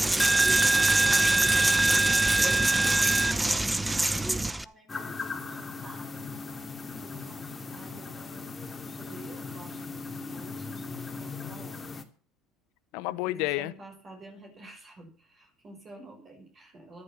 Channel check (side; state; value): both; normal; correlation 0.94